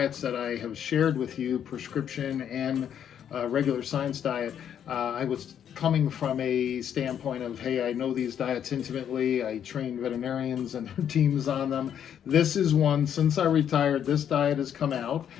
that I have shared with you, prescription and regular science diet, I was coming from a standpoint of, hey, I know these diets intimately. I train veterinarians and their teams on them. This is one, since I retired, this diet has come out.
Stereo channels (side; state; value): right; quieter; 9.1 dB